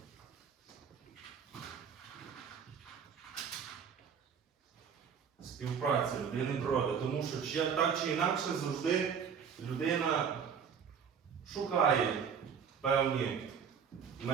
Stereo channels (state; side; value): quieter; left; 7.0 dB